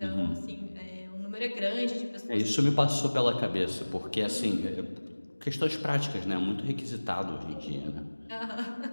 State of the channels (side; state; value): both; inverted; correlation -1.00